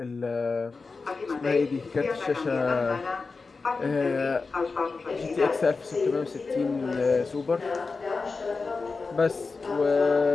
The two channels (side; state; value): right; quieter; 4.3 dB